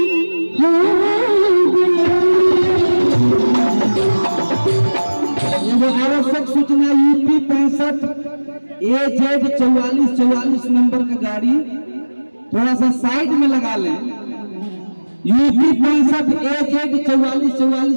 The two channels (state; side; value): inverted; both; correlation -1.00